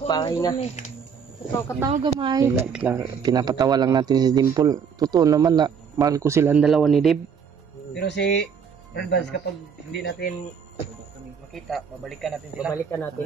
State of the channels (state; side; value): quieter; left; 6.8 dB